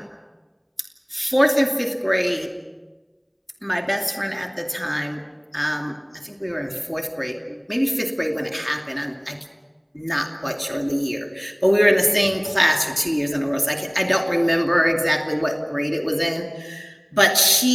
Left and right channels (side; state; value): both; identical; correlation 1.00